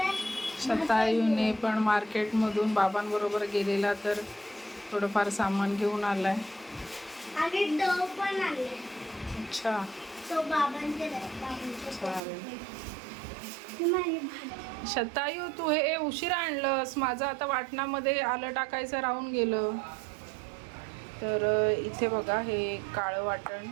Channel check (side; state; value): left; drops out; at 12.2 s